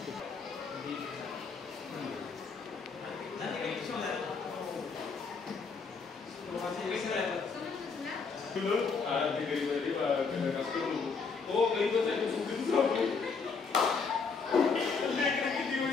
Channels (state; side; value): quieter; right; 5.0 dB